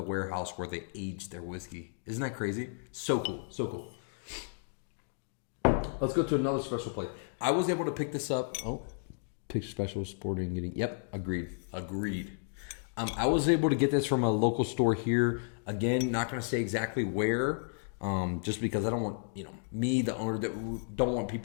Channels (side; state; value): right; silent; digital silence